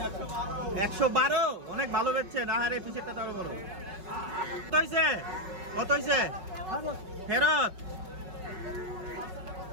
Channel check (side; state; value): left; late; 5.4 ms